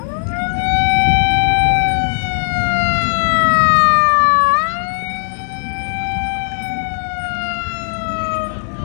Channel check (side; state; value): right; silent; digital silence